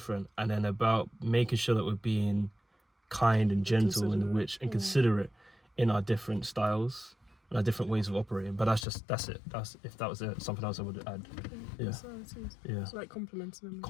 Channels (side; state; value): right; drops out; at 8.8 s